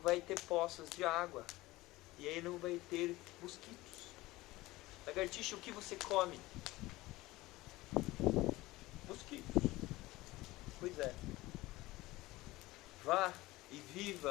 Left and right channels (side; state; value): right; quieter; 19.1 dB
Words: ter poças de água. E aí não vai ter mosquitos. Lagartixa, o que você come? Mosquitos. Pois é. Vá e